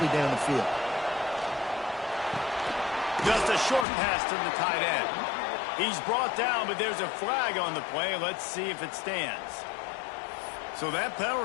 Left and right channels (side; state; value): right; drops out; at 3.9 s